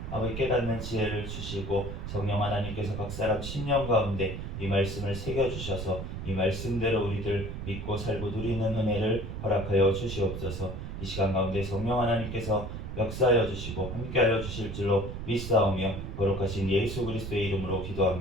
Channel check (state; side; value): noise; right; rumble, 7 dB below the sound